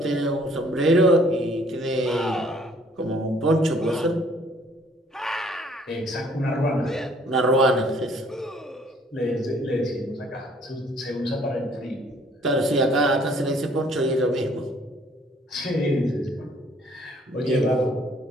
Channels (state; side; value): normal; both; correlation 0.60